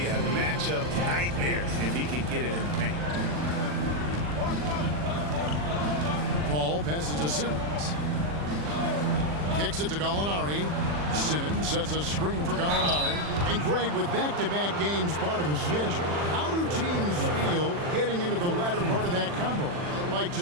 a matchup nightmare if he can get it in the paint. Paul passes to Simmons. Kicks it to Gallinari. Simmons sets a screen for Gallinari. And Greg, with back-to-back games part of the schedule, how do teams feel getting into the latter part of that combo, like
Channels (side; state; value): left; late; 40 ms